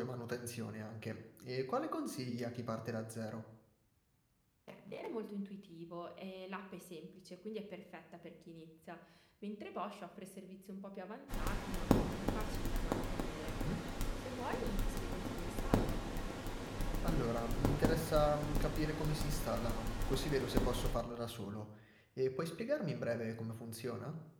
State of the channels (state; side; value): identical; both; correlation 1.00